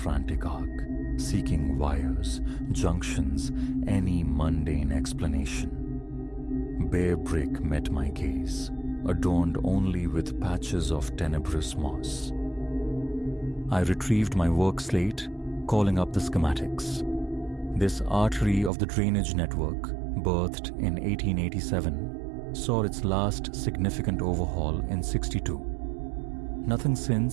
arc, seeking wires, junctions, any mundane explanation. Bare brick met my gaze, adorned only with patches of tenebrous moss. I retrieved my work slate, calling up the schematics. This artery of the drainage network, birthed in 1887, saw its last significant overhaul in 62. Nothing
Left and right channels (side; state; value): left; drops out; at 18.7 s